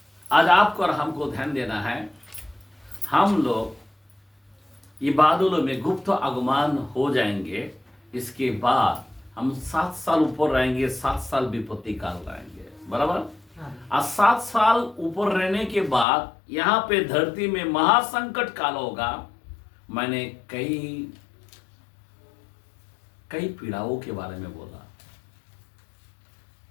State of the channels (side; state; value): right; drops out; at 16.1 s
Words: आज आपको और हमको ध्यान देना है, हम लोग ये बादलों में गुप्त आगमन हो जाएंगे। इसके बाद हम 7 साल ऊपर रहेंगे, 7 साल विपत्ति काल रहेंगे। बराबर। आज 7 साल ऊपर रहने के बाद यहाँ पे धरती में महासंकट काल होगा। मैंने कई पीड़ाओं के बारे में बोला,